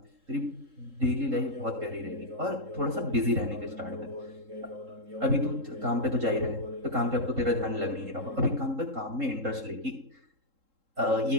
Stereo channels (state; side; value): late; left; 3.7 ms